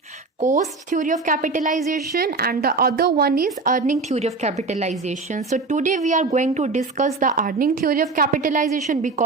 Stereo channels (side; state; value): left; quieter; 3.9 dB